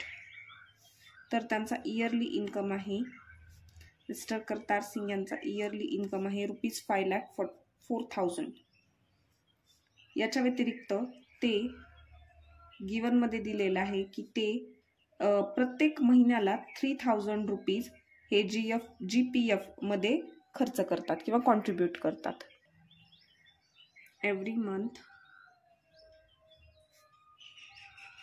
तर त्यांचा इयरली इन्कम आहे, मिस्टर करतार सिंग यांचा इयरली इन्कम आहे ₹5,04,000. याच्या व्यतिरिक्त ते गिवनमध्ये दिलेलं आहे की ते प्रत्येक महिन्याला ₹3,000 हे GPF मध्ये खर्च करतात किंवा कॉन्ट्रीब्यूट करतात. Every month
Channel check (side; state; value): both; identical; correlation 1.00